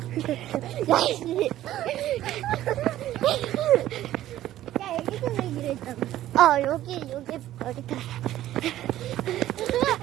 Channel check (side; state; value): left; quieter; 13.6 dB